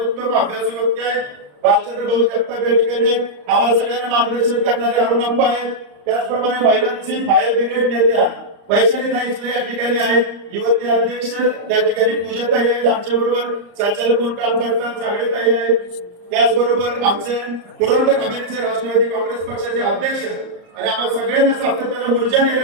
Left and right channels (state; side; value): late; left; 34 ms